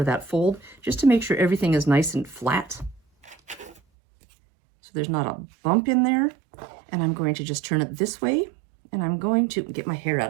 that fold, just to make sure everything is nice and flat. So there's not a bump in there. And I'm going to just turn it this way. And I'm going to get my hair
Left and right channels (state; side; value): drops out; left; at 3.8 s